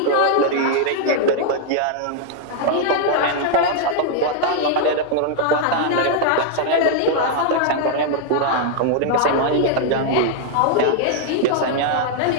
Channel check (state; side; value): different; both; correlation -0.01